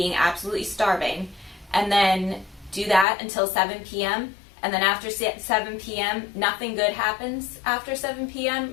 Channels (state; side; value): drops out; right; at 3.1 s